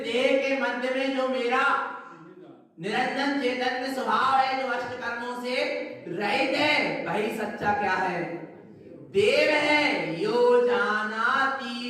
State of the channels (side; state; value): both; identical; correlation 1.00